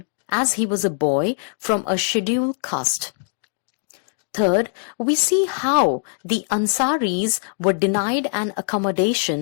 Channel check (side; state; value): right; silent; 64 dB below the other